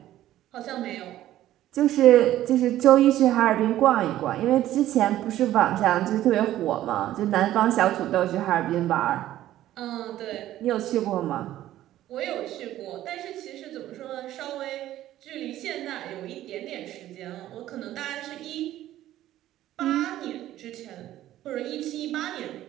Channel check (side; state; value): left; quieter; 13.6 dB